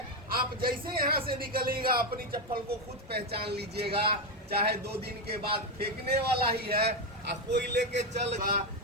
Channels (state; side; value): normal; both; correlation 0.08